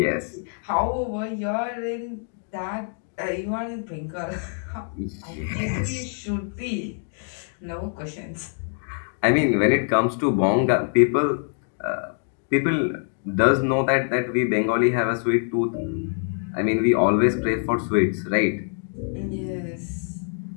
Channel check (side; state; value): right; silent; 59 dB below the other